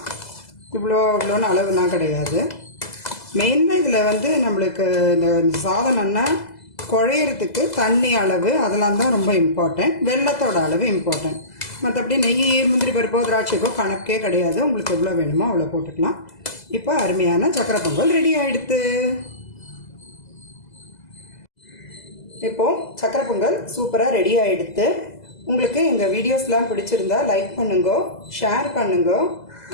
இவ்வளோன்னு அளவுலாம் கிடையாது. மெயினாக இதில் நம்மளுக்கு இந்த சாதம் நல்லா குழையிறதுக்கு தண்ணி அளவு அதெல்லாம் தான் ரொம்ப இம்பார்ட்டன்ட். வெல்லத்தோட அளவு இம்பார்ட்டன்ட். மற்றபடி நெய் முந்திரி பருப்போ திராட்சைக்கோ கணக்கே கிடையாது. உங்களுக்கு எவ்வளோ வேணுமோ அவ்வளோ போட்டுக்கலாம். இப்போ அருமையான சக்கரை பொங்கல் ரெடி ஆகிடுது. இப்போது சக்கரை பொங்கல் சூப்பராக ரெடி ஆகிடுது. உங்களுக்கு எங்கள் வீடியோஸ்லாம் பிடிச்சிருந்தா லைக் பண்ணுங்க, ஷேர் பண்ணுங்க,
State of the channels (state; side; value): late; right; 2.0 ms